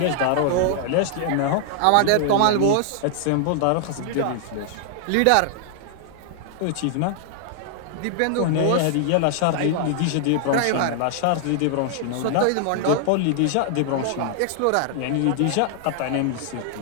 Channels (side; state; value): both; different; correlation 0.00